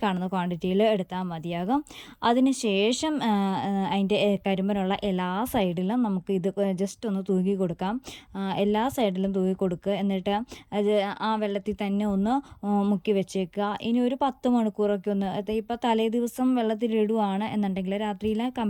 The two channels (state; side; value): identical; both; correlation 1.00